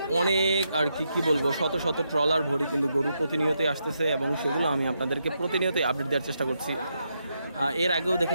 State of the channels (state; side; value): inverted; both; correlation -0.82